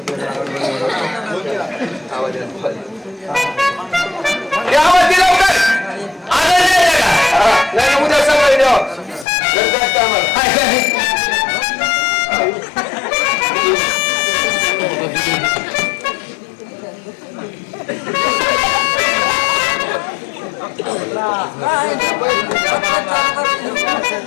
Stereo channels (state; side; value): drops out; right; at 9.2 s